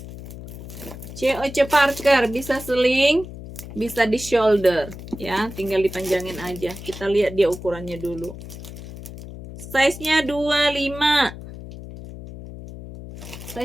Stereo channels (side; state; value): left; noise; hum, 13 dB below the sound